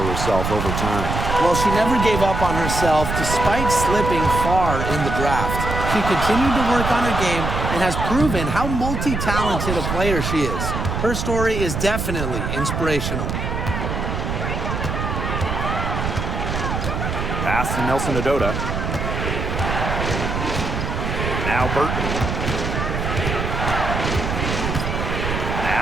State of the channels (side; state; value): right; noise; rumble, 2 dB below the sound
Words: herself over time. Well, she never gave up on herself despite slipping far in the draft. She continued to work on her game and has proven how multi-talented a player she is. Her story is definitely inspirational. Pass to Nelson Adota. Now Burton.